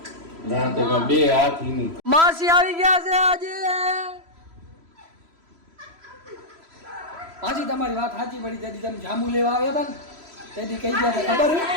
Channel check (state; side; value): late; left; 3.0 ms